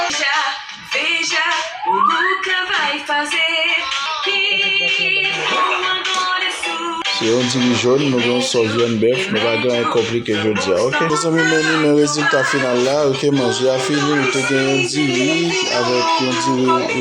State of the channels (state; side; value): identical; both; correlation 1.00